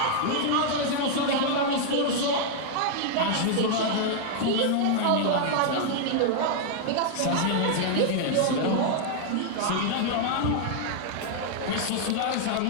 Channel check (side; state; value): both; different; correlation 0.00